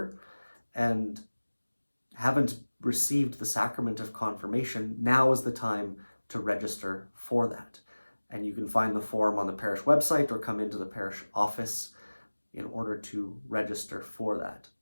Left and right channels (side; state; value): both; inverted; correlation -1.00